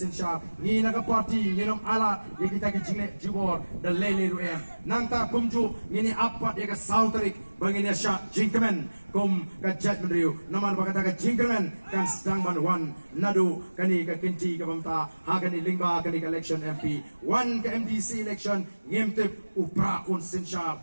ni naga party ni nom ala ye kita ke jingle jibor da lele ruem nangta kumju ni apat ye ka sautrik bangin sha jingkemen kum ka jat mendriu namal bakata ka jingkemen kan sedang ban wan nadu kani ka kinti ka bamta ha kani lingba kani ka election MP wan ka MDC election ngemtep upra un sensha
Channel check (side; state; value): both; inverted; correlation -1.00